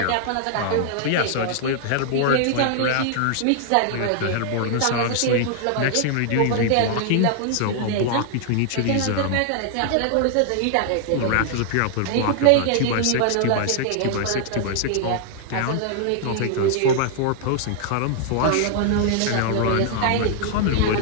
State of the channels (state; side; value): different; both; correlation -0.01